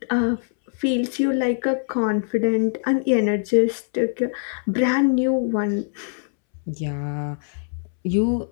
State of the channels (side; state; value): right; silent; 64 dB below the other